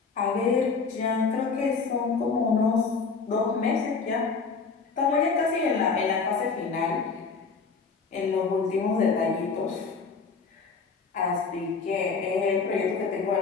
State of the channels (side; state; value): right; quieter; 4.9 dB